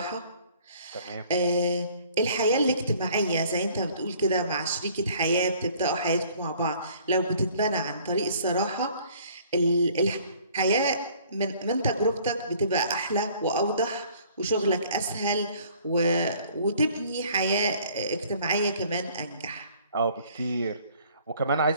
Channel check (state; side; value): inverted; both; correlation -0.56